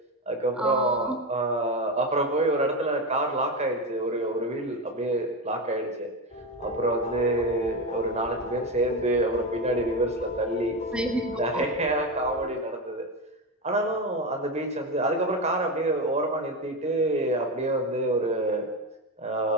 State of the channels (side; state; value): both; normal; correlation 0.16